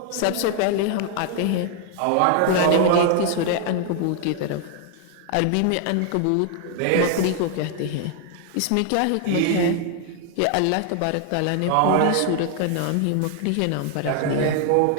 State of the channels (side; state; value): both; different; correlation 0.00